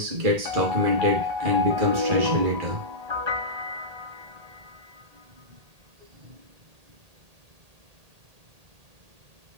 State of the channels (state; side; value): late; left; 1.8 ms